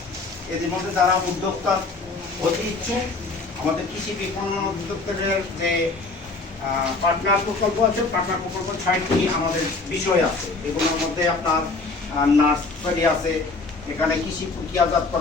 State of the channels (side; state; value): right; quieter; 3.7 dB